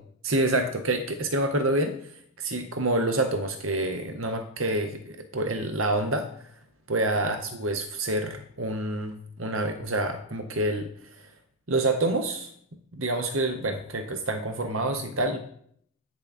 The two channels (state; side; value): normal; both; correlation -0.05